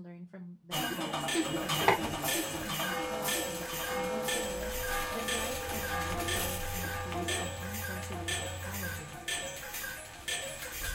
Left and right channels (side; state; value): both; identical; correlation 1.00